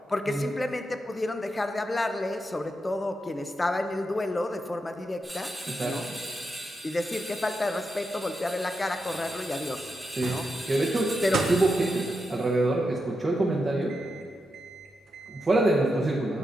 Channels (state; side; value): normal; both; correlation 0.86